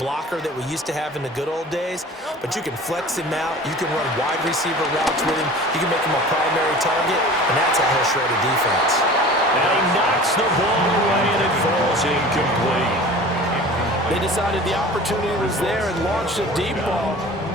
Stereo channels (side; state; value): both; normal; correlation 0.41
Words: that we used to have in the good old days, but you can flex him out. You can run wide receiver routes with him. You can make him a primary target, and that's how he'll shred a defense. And he knocks the ball away, and it falls incomplete. They decided the opportunity was there and launched a deep ball,